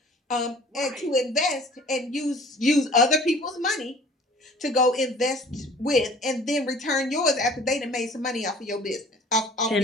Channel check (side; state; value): both; normal; correlation 0.50